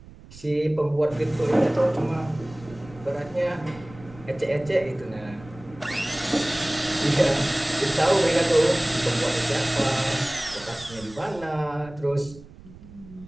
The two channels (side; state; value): right; noise; rumble, 19 dB below the sound